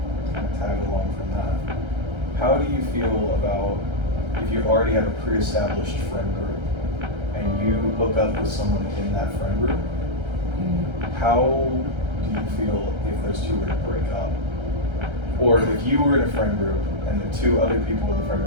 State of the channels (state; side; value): late; left; 1.3 ms